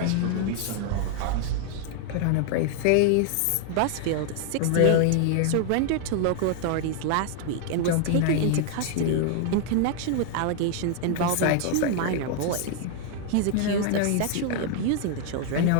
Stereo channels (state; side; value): different; both; correlation 0.00